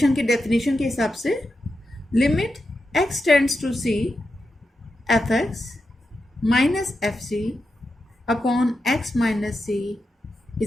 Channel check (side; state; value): both; normal; correlation 0.88